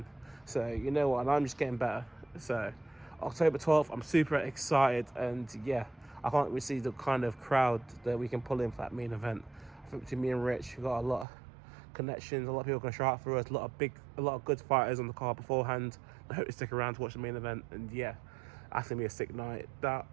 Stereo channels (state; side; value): drops out; left; at 11.2 s